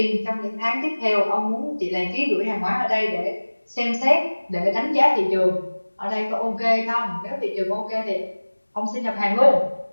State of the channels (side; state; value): both; inverted; correlation -1.00